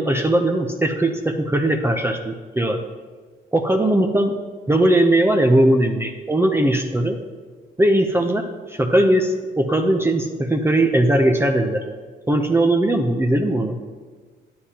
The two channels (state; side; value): normal; both; correlation 0.81